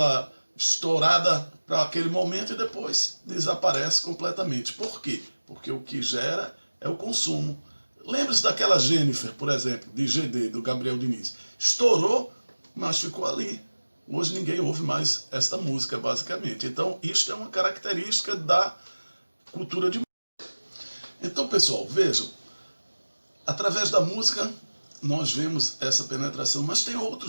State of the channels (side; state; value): both; inverted; correlation -1.00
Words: estourada para aquele momento e depois desaparece completamente. Por quê? Porque o que gera é o consumo. Lembre-se daquela Jennifer, por exemplo, de GD, do Gabriel Diniz. Estourou, mas ficou ali. Hoje ninguém ouve mais esta música, basicamente. Então, isto é uma característica da cultura de massa. Então, pessoal, vejam, através da música nós vemos essa penetração, mas tem